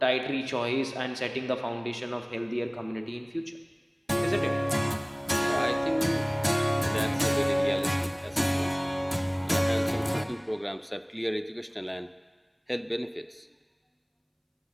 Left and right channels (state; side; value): identical; both; correlation 1.00